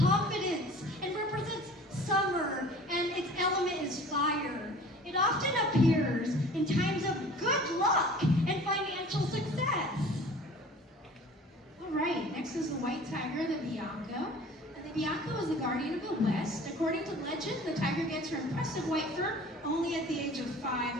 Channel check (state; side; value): normal; both; correlation 0.44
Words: and represents summer, and its element is fire. It often appears in times of good luck and financial success. All right, next is the white tiger, the Bianco. The Bianco is the guardian of the West. According to legend, the tiger gets her impressive white fur only at the age of